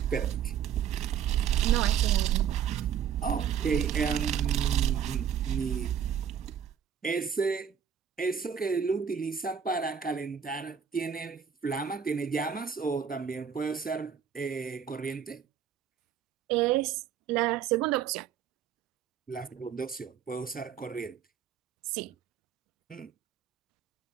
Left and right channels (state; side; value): quieter; left; 8.2 dB